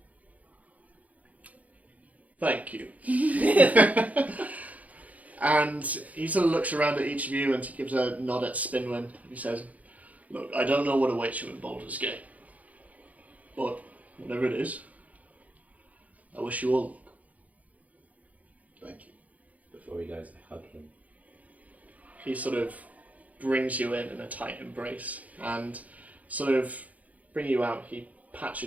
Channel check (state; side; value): late; left; 0.073 ms